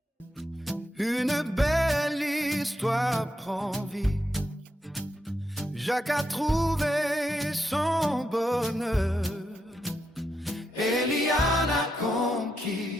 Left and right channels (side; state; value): both; normal; correlation 0.83